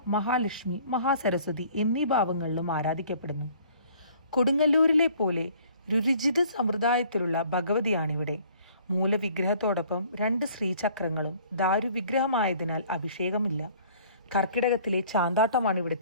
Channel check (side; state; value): both; inverted; correlation -0.55